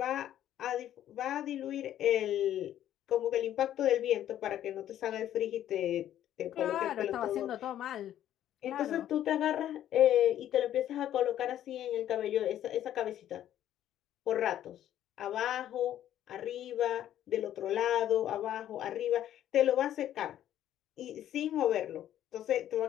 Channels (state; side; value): quieter; right; 11.6 dB